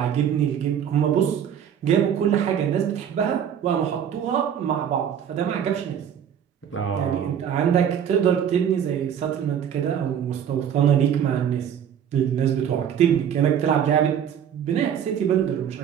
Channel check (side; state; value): left; quieter; 8.9 dB